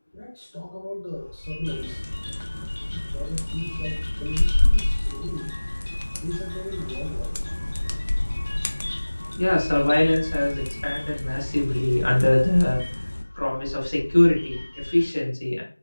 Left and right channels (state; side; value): inverted; both; correlation -1.00